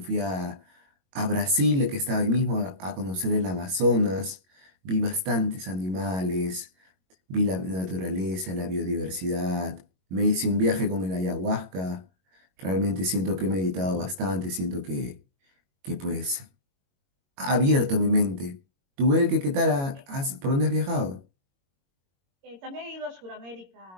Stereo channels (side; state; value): left; late; 22 ms